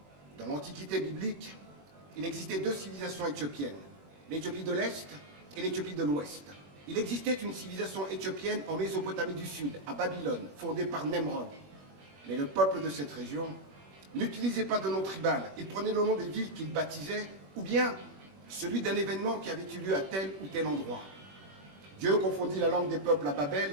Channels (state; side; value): late; left; 21 ms